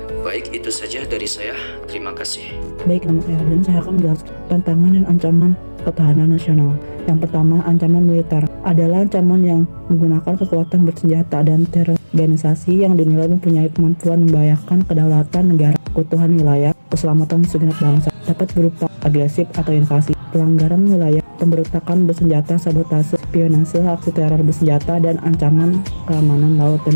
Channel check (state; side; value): inverted; both; correlation -1.00